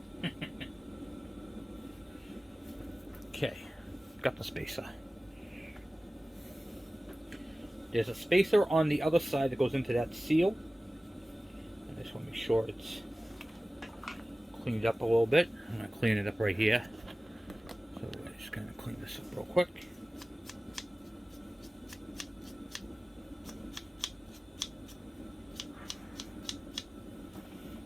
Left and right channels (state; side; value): normal; both; correlation 0.97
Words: Okay. Got the spacer. There's a spacer on the other side that goes into that seal. I just want to make sure it's cleaned up a little bit. I'm going to clean it up right here. So we're just going to clean this up real quick.